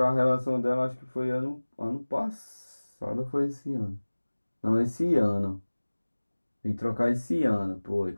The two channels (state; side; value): inverted; both; correlation -1.00